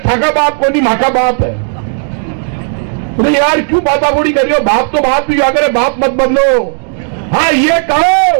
थाका बाप को नहीं माका बाप है। तो यार क्यों बातागोड़ी कर रही हो, बाप तो बाप ही अगर बाप मत बदलो। हाँ ये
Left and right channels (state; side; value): silent; left; 63 dB below the other